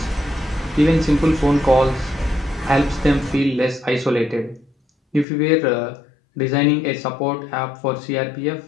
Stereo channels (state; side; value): drops out; right; at 5.2 s